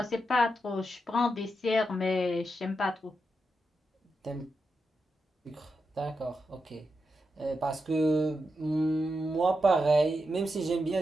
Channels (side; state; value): both; normal; correlation 0.86